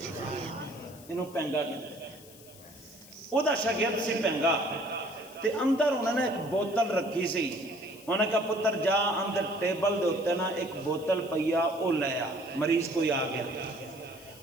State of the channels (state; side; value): noise; left; hiss, 21 dB below the sound